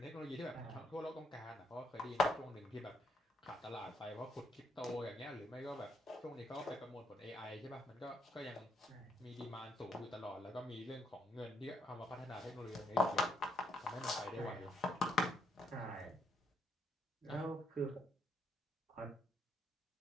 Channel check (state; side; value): normal; both; correlation 0.75